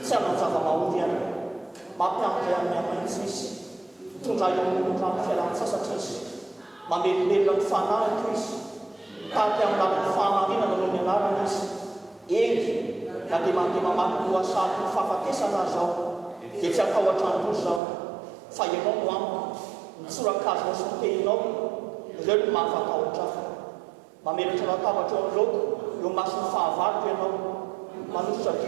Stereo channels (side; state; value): left; drops out; at 17.8 s